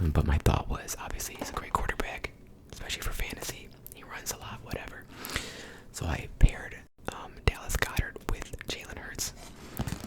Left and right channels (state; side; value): identical; both; correlation 1.00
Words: But my thought was, obviously, he's a great quarterback, especially for fantasy. He runs a lot, whatever. So I paired Dallas Goedert with Jalen Hurts.